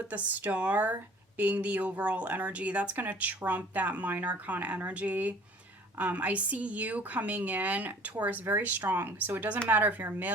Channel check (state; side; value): normal; both; correlation 0.50